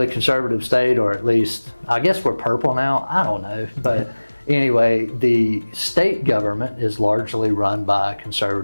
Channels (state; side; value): inverted; both; correlation -1.00